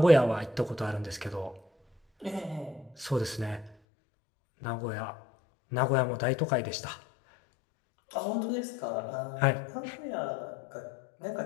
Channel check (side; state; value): right; drops out; at 3.8 s